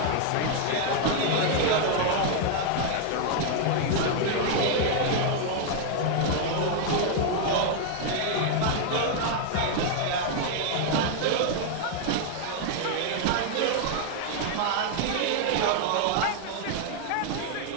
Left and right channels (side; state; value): both; different; correlation 0.00